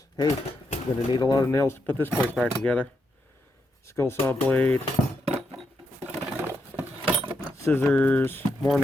Hey, I'm gonna need a lot of nails to put this place back together. Skill saw blade, scissors, more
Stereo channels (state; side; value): normal; both; correlation 0.81